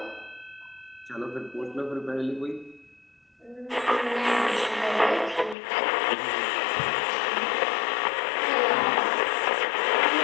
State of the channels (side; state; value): right; drops out; at 5.6 s